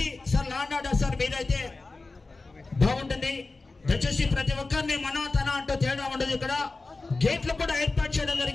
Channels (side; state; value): right; quieter; 3.5 dB